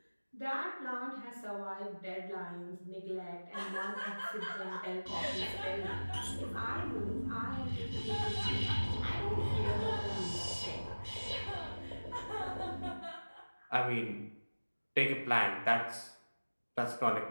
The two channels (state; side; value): inverted; both; correlation -1.00